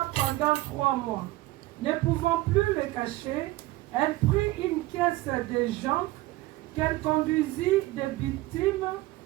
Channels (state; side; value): quieter; left; 18.4 dB